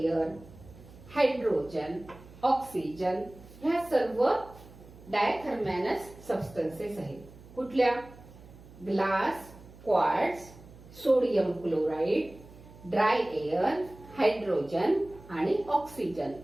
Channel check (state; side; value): noise; right; hum, 20 dB below the sound